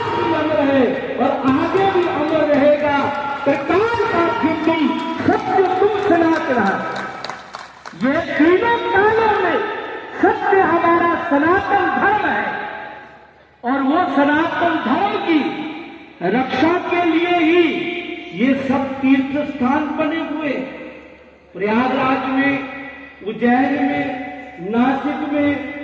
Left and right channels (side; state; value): both; identical; correlation 1.00